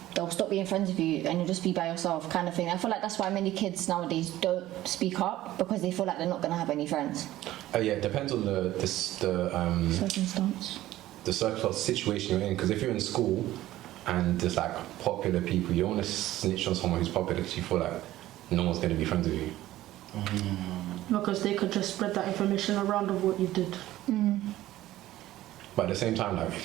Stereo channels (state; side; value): quieter; left; 15.0 dB